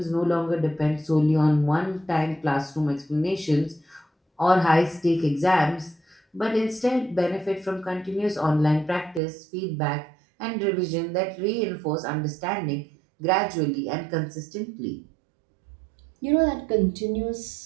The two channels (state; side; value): drops out; left; at 9.2 s